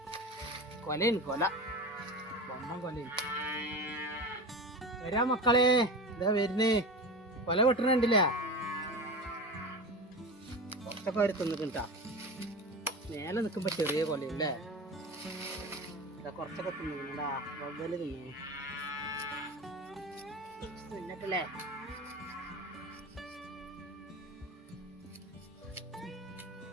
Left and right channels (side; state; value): both; normal; correlation 0.28